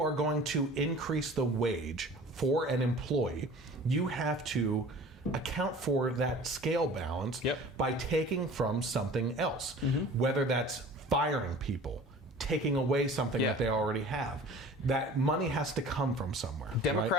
are going to increase the wage for an employee, you have to account for that scale balance by taking from something else, whether that's firing people, taking away something that they already have. That money has to come from somewhere.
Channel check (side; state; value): both; normal; correlation 0.44